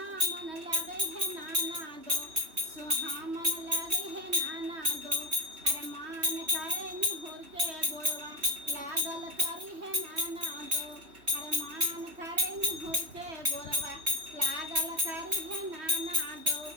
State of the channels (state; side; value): late; left; 3.1 ms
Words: लगे है नाना दो, सुहामन लगे है नाना दो। अरे मान करे निहुर के गोरवा लागल करी है नाना दो। अरे मान करे निहुर के गोरवा लागल करी है नाना दो।